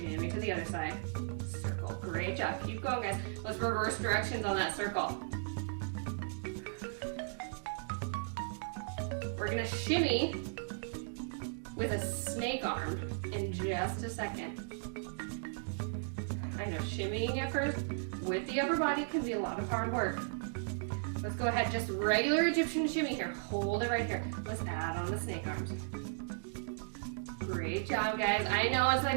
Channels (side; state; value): left; silent; digital silence